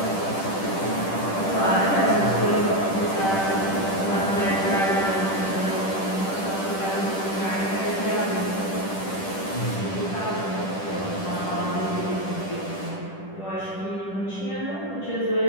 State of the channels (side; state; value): right; late; 10 ms